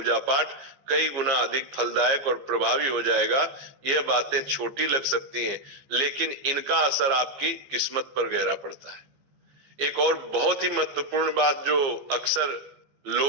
पाठ कई गुना अधिक फलदायक और प्रभावी हो जाएगा। यह बातें छोटी लग सकती हैं, लेकिन इनका असर आपकी किस्मत पर गहरा पड़ता है। एक और बहुत ही महत्वपूर्ण बात जो अक्सर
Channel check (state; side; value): late; left; 14 ms